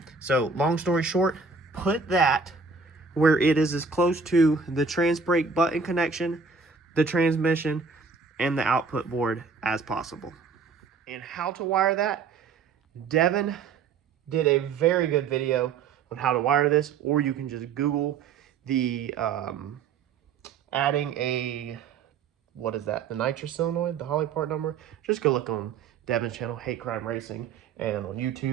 So long story short, put that where it is as close to the trans brake button connection, the transmission, and the output board as possible. And how to wire that, Devin did a very good video on how to wire this, or you can just Google the adding a, what is that, the nitrous solenoid, the Holly part number. Just go look on Devin's channel, Hate Crime Racing, and on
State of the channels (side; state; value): left; quieter; 5.1 dB